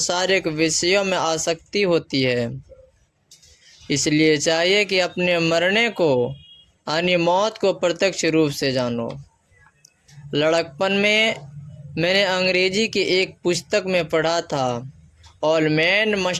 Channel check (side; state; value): both; identical; correlation 1.00